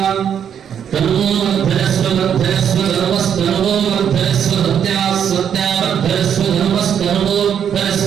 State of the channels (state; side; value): quieter; left; 8.5 dB